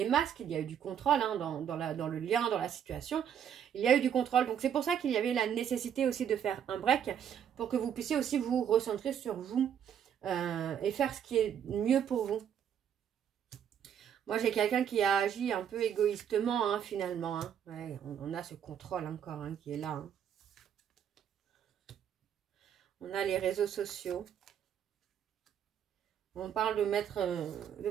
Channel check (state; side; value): quieter; left; 8.9 dB